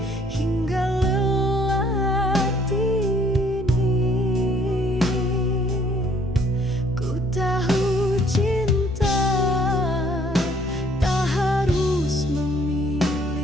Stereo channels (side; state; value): both; normal; correlation 0.62